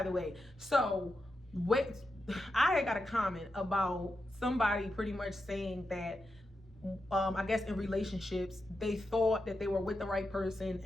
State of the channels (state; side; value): normal; both; correlation 0.88